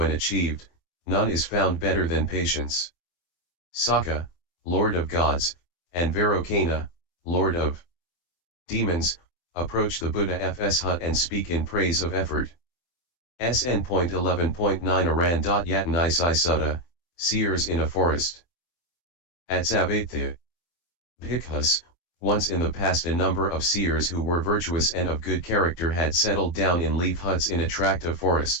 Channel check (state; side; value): late; right; 24 ms